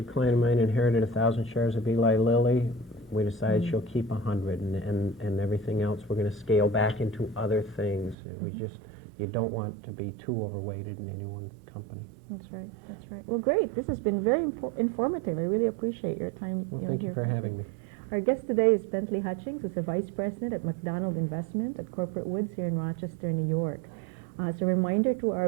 client of mine inherited 1,000 shares of Eli Lilly. We decided she'll keep 100 and everything else we're going to scale back into other things. You don't want to be too overweighted in any one company. That's right, that's right. Well, great. This has been very informative. I really appreciate your time. Well, thank you for having me. Our guest today is Bentley Hutchings, who's a vice president at McDonald Investment at Corporate Woods here in Rochester, New York. As a reminder to our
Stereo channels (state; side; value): drops out; left; at 8.2 s